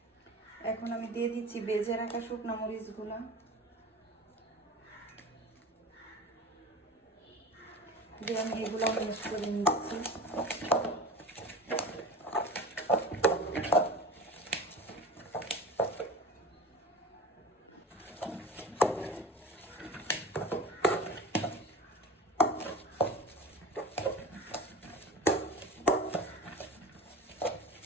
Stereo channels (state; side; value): normal; both; correlation 0.34